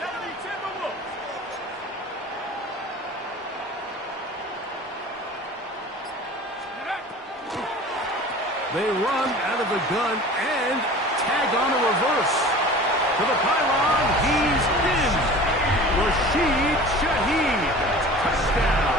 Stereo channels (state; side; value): normal; both; correlation 0.40